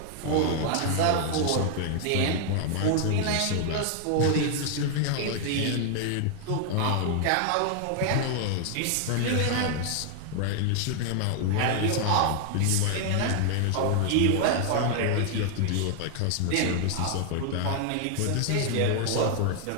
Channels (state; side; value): different; both; correlation 0.00